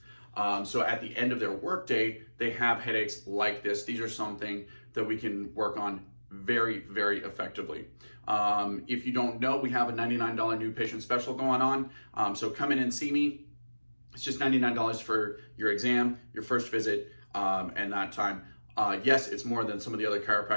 So at the end of their workday, they have headaches like this. These are something that we can work on very, very effectively. If you don't know, we have a $99 new patient special going on. So come in and see me. It's just $99 for your exam, your first visit, and that time. Yes, it's more than some of the other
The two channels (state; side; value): inverted; both; correlation -1.00